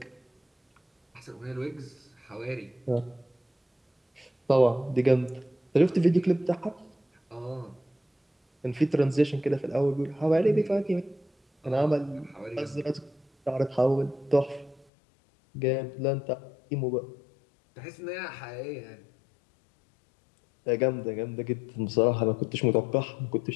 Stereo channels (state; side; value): drops out; right; at 14.9 s